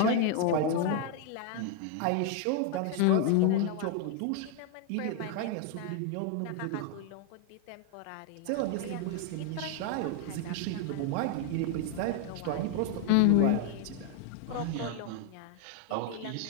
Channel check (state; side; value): different; both; correlation 0.00